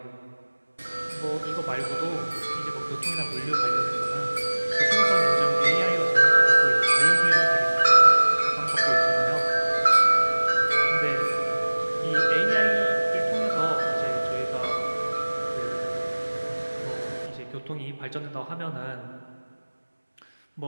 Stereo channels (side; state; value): both; inverted; correlation -1.00